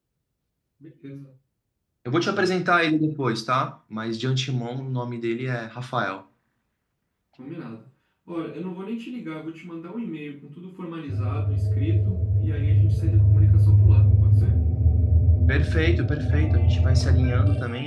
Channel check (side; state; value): both; identical; correlation 1.00